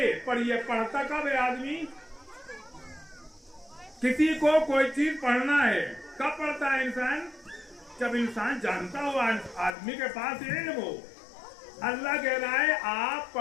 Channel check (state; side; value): drops out; right; at 9.8 s